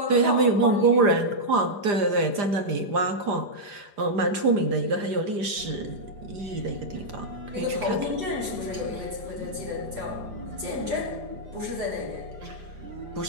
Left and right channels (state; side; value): late; left; 4.9 ms